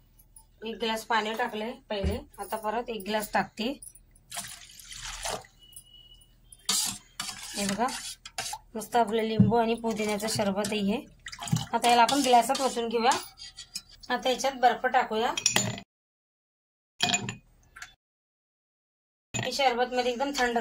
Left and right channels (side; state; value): both; identical; correlation 1.00